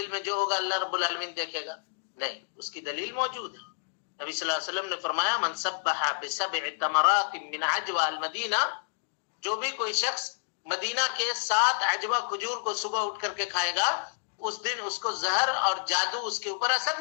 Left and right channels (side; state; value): right; silent; digital silence